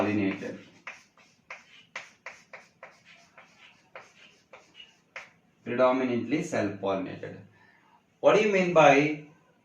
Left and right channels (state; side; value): identical; both; correlation 1.00